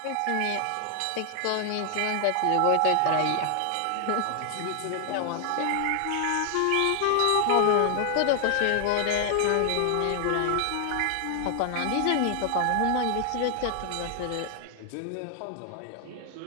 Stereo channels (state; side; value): different; both; correlation 0.00